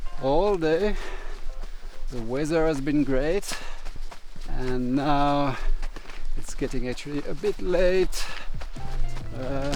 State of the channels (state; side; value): identical; both; correlation 1.00